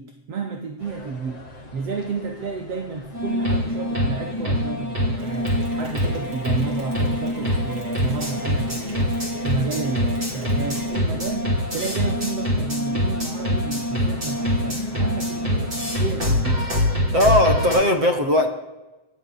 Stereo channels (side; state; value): left; late; 7.8 ms